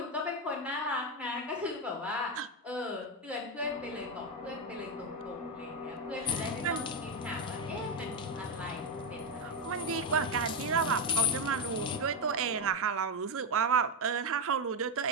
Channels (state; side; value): normal; both; correlation 0.07